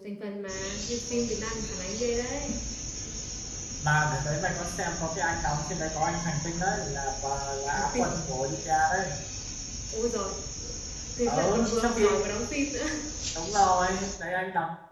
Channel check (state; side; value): identical; both; correlation 1.00